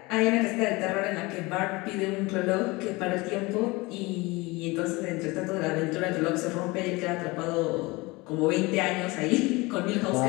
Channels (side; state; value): right; quieter; 23.4 dB